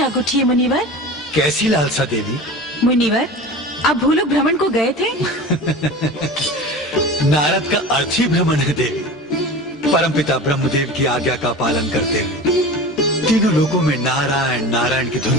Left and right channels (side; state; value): both; normal; correlation 0.33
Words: उठी है मुनिवर। कैसी लालसा देवी? मुनिवर, आप भूलोक भ्रमण को गए थे? नारद का अर्थ ही भ्रमण है देवी। परमपिता ब्रह्मदेव की आज्ञा का पालन करते हुए तीनों लोगों में नारायण नारायण की